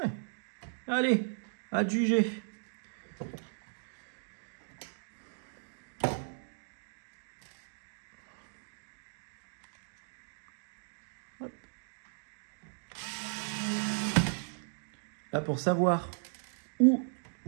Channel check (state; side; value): silent; left; digital silence